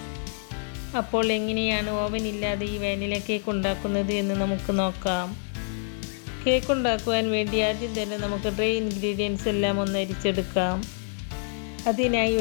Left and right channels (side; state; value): right; silent; digital silence